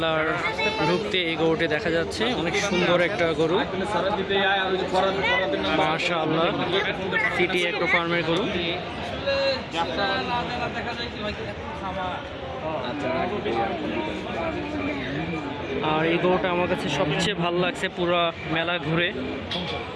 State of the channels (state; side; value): identical; both; correlation 1.00